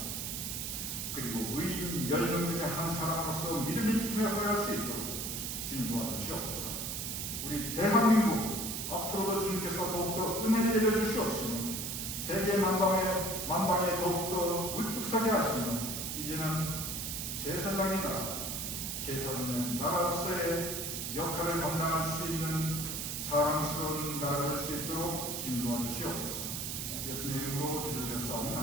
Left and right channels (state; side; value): noise; right; hiss, 4 dB below the sound